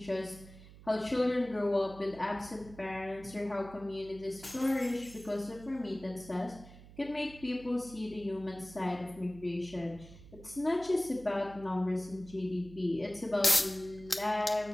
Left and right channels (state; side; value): noise; right; hum, 18 dB below the sound